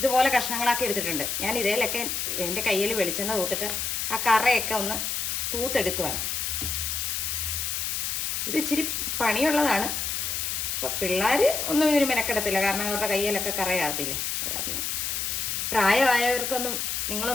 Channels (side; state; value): left; noise; hiss, 1 dB below the sound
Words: കഷ്ണങ്ങളാക്കി എടുത്തിട്ടുണ്ട്. ഞാൻ ഇതേലൊക്കെ എൻ്റെ കയ്യിൽ വെളിച്ചെണ്ണ തൂത്തിട്ട് ആ കറയൊക്കെ ഒന്ന് തൂത്തെടുക്കുവാണ്. ഇത് ഇച്ചിരി പണിയുള്ളതാണ്. അപ്പോൾ പിള്ളേർ ഒന്നും ഇതിന് മെനക്കെടത്തില്ല, കാരണം അവരുടെ കയ്യിലൊക്കെ കറയാകത്തില്ലേ. അത് കാരണം പ്രായമായവർക്കൊന്നും